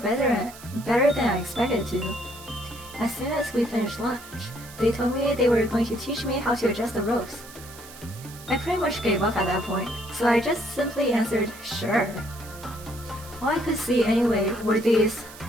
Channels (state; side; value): noise; right; hiss, 18 dB below the sound